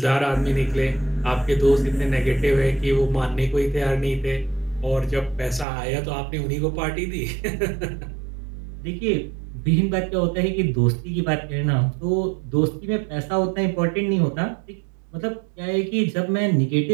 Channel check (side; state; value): left; drops out; at 5.7 s